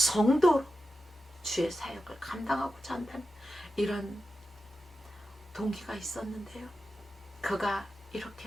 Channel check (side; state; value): both; normal; correlation 0.91